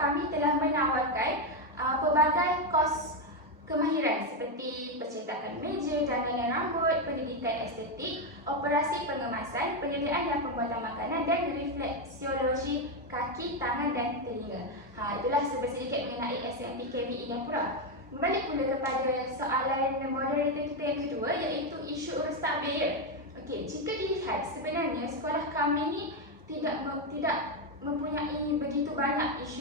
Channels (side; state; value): both; normal; correlation 0.06